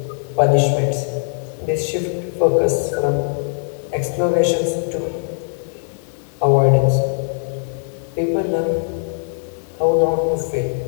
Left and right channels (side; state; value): right; silent; digital silence